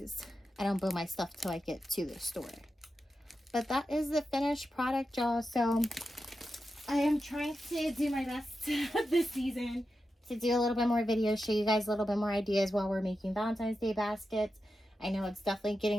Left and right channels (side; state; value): both; normal; correlation 0.90